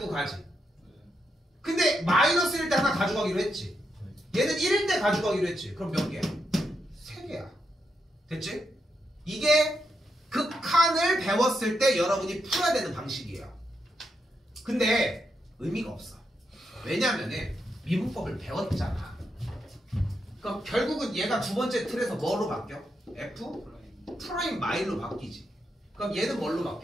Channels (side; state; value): both; normal; correlation 0.83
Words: 가지. 근데 마이너스 1일 때 하나 가져가기로 했지. 얘는 1일 때 가져가기로 했지. 그럼 몇 개야? 3개야. 됐지? 이게 극한을 배웠을 때 여러분이 풀어야 되는 방식이에요. 근데 의미가 없어. 왜냐면은 미분법을 배웠잖아. 그럼 결국은 얘가 두 번째 틀에서 뭐로 바뀌어? f 프라임 마일로 바뀌지. 그럼 얘는 뭘로